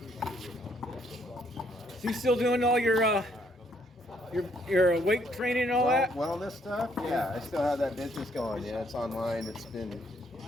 So you still doing all your weight training and all that? Wellness stuff? Yeah, I still have that business going. Yeah, it's online. It's been,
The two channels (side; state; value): both; normal; correlation 0.69